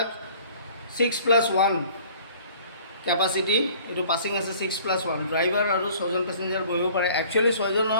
6+1 কেপাচিটি, এইটো পাছিং আছে 6+1। ড্ৰাইভাৰ আৰু 6জন পেছেঞ্জাৰ বহিব পাৰে। একচুৱেলি 6জন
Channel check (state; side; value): inverted; both; correlation -0.51